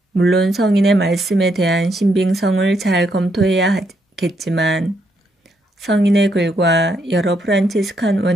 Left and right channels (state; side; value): normal; both; correlation 0.76